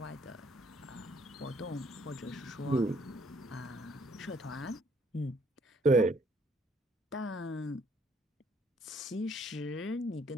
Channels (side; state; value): both; normal; correlation 0.64